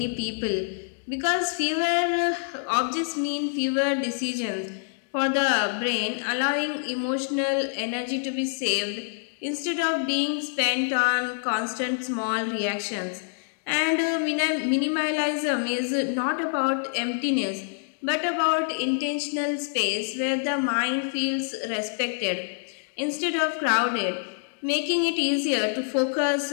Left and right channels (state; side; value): silent; right; digital silence